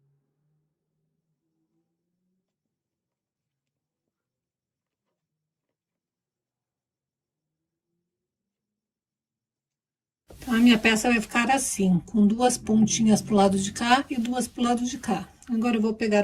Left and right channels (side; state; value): both; identical; correlation 1.00